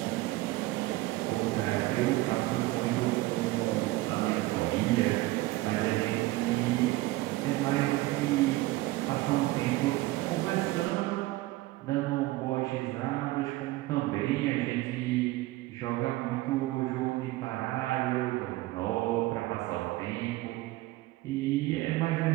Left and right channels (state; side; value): quieter; left; 18.8 dB